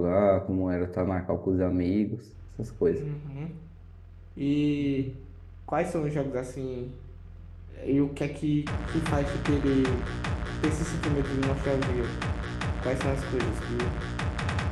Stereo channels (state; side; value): identical; both; correlation 1.00